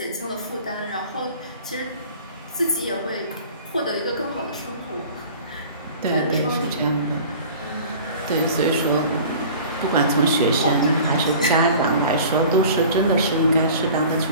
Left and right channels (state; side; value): inverted; both; correlation -0.43